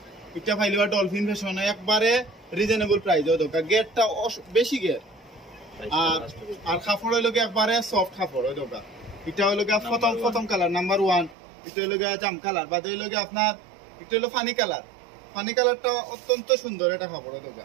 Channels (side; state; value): left; drops out; at 11.4 s